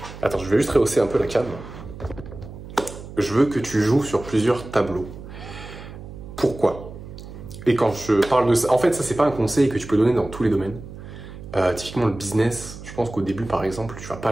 Attends, je vais juste rehausser un peu la cam. Je veux que tu joues sur plusieurs tableaux. Pourquoi? Et quand je parle de ça, en fait ça c'est pas un conseil que tu peux donner dans tous les domaines. Typiquement le business, je pense qu'au début par exemple, tu vas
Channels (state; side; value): noise; right; hum, 14 dB below the sound